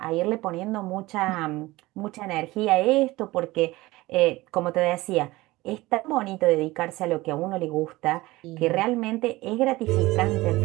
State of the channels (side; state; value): left; quieter; 19.5 dB